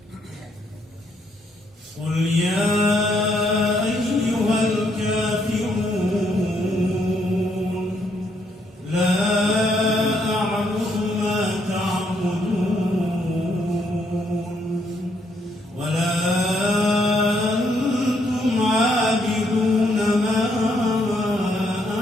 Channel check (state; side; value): normal; both; correlation 0.73